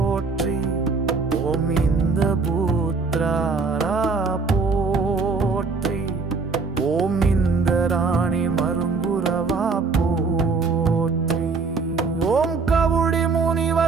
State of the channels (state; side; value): quieter; left; 4.4 dB